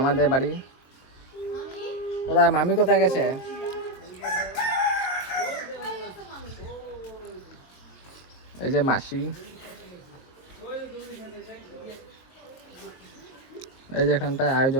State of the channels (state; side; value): late; right; 23 ms